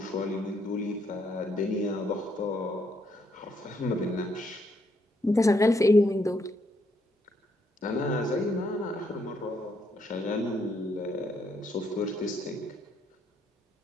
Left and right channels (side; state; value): both; normal; correlation 0.74